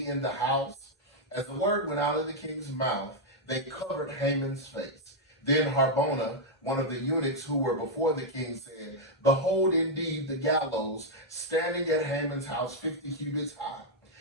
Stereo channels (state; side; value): normal; both; correlation -0.02